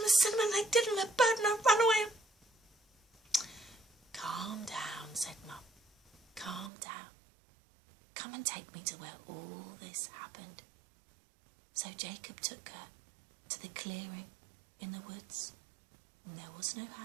the cinnamon, and they did, and the bird, and I ran away." "Calm down," said Mum. "Calm down. Come and take me to where all this happened." So Jacob took her to the clearing in the woods, and there was no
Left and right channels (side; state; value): left; drops out; at 6.7 s